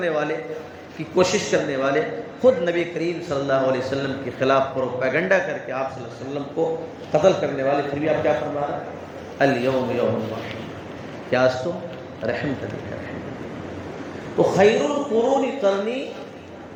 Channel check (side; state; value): both; identical; correlation 1.00